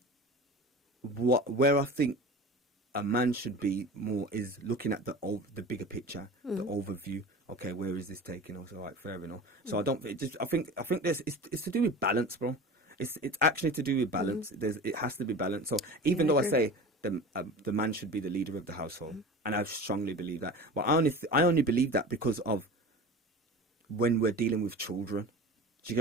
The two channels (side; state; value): both; normal; correlation 0.35